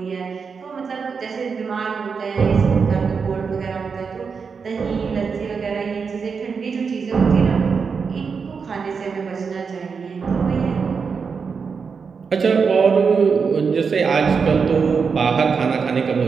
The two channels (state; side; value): quieter; left; 5.6 dB